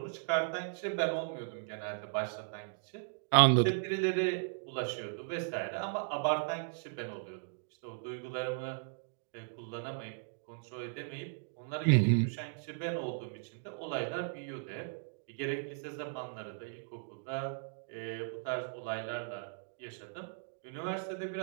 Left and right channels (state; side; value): silent; left; digital silence